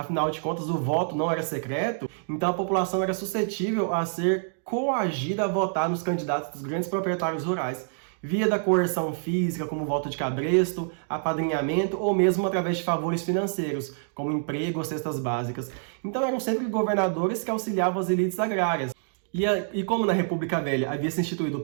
de contas, o voto não era secreto, então a população era suscetível a ser coagida a votar nos candidatos dos grandes proprietários rurais, via da coerção física, como voto de cabresto, apadrinhamento ou mesmo através de favores financeiros, como emprego ou cestas básicas. Então eram sempre governadores que auxiliavam as elites agrárias. E como na República Velha havia se instituído o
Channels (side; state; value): left; silent; digital silence